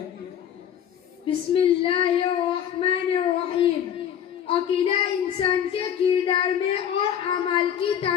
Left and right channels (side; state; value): right; quieter; 9.4 dB